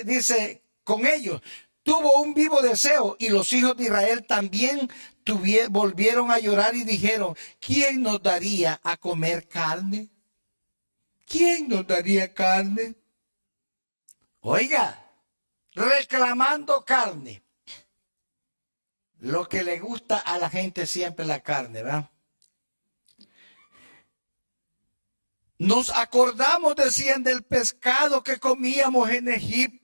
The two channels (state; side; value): inverted; both; correlation -1.00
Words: ellos, tuvo un vivo deseo, y los hijos de Israel también volvieron a llorar y dijeron, ¿quién nos daría a comer carne? ¿Quién nos daría carne? Oiga, reclamando carne. Lo que le gusta a la gente siempre la carne, ¿verdad? Nos acordamos, decían, del pescado que comíamos en